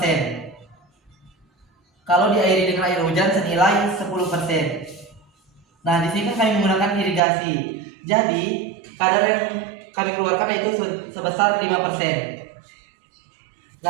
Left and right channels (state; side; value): drops out; left; at 7.2 s